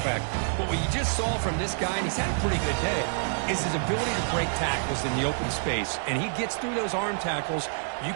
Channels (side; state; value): left; silent; digital silence